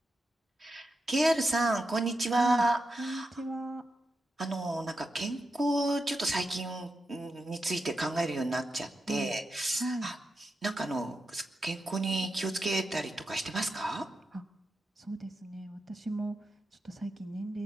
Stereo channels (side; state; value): both; normal; correlation 0.88